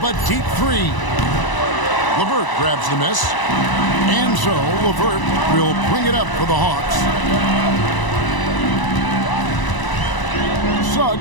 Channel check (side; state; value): right; late; 1.0 ms